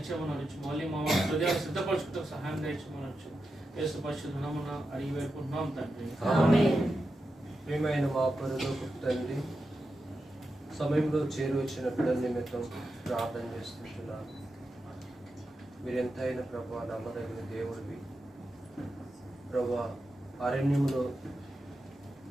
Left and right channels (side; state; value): both; normal; correlation 0.89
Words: అనొచ్చు. మళ్ళీ మా హృదయాలు సిద్ధపరచుకుంటే సహాయం దయచేయమని అనొచ్చు. యేసు పరిశుద్ధ నామమున అడిగి వేడుకుంటున్నాం తండ్రి. ప్రియమైన మా పరలోకపు తండ్రి, సమయంలో చేరువచ్చిన బిడ్డల నిమిత్తం ప్రార్థన చేస్తుంటున్నాను. మీరు ఎంతైనా ప్రభా నమ్మదగిన దేవుడివి. ప్రభా అరణ్యంలో